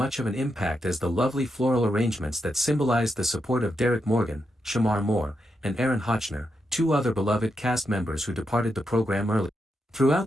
of an impact as the lovely floral arrangements that symbolized the support of Derek Morgan, Shamar Moore, and Aaron Hotchner, two other beloved cast members who departed the program early.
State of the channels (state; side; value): normal; both; correlation 0.84